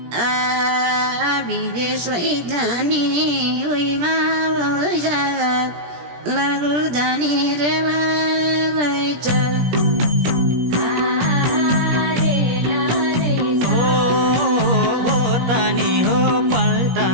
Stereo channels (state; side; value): late; left; 17 ms